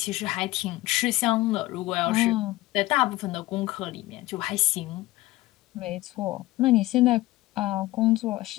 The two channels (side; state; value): right; quieter; 18.2 dB